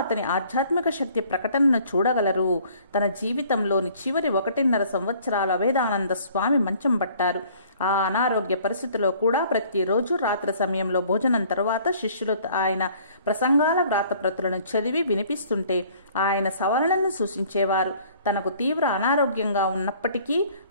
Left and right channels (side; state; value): both; inverted; correlation -0.55